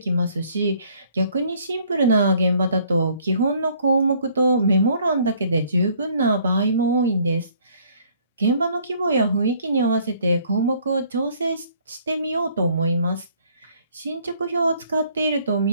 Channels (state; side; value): inverted; both; correlation -0.61